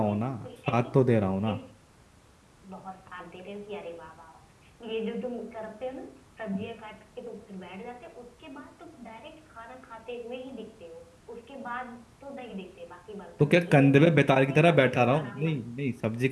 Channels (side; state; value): both; identical; correlation 1.00